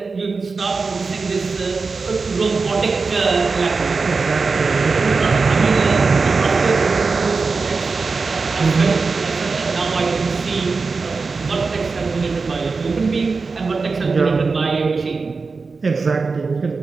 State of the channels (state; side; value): quieter; left; 4.4 dB